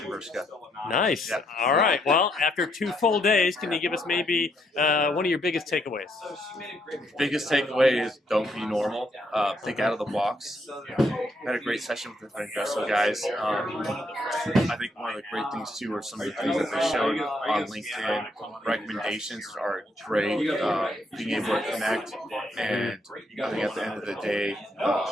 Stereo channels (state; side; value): normal; both; correlation 0.74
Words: Nice. Yeah. All right. Well, after 2 full days, can you give us maybe one of your biggest takeaways? Biggest takeaway is don't be normal. Think out of the box. Had a great session with the Vengreso guys. I think one of the great things too are some of the things that they showed on LinkedIn. Recommendations are great. Being able to connect, and I think at the end of the day,